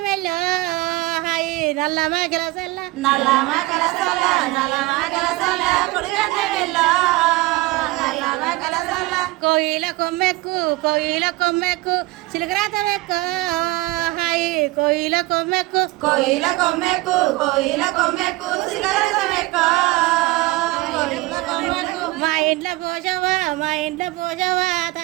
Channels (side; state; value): left; quieter; 20.4 dB